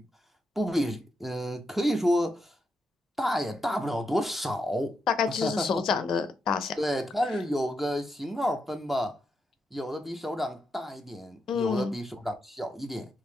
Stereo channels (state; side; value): normal; both; correlation 0.83